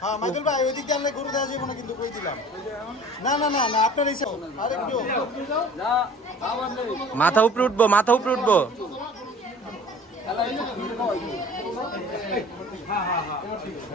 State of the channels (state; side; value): normal; both; correlation 0.45